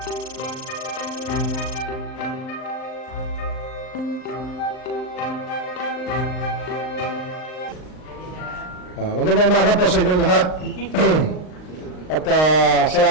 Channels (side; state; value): right; late; 39 ms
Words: umaga po sa inyong lahat. At